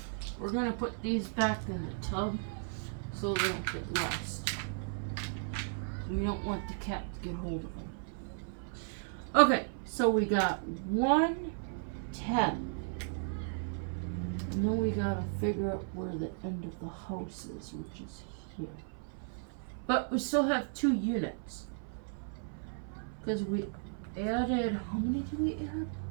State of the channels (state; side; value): silent; left; 54 dB below the other